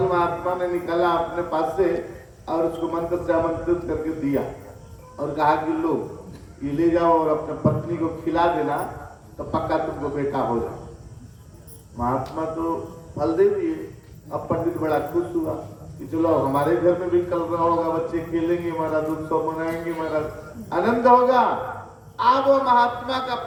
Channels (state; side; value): identical; both; correlation 1.00